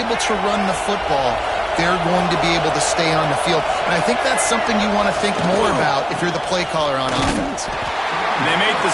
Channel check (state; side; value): identical; both; correlation 1.00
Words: to run the football, they're going to be able to stay on the field. And I think that's something you want to think more about if you're the play caller on offense. They make the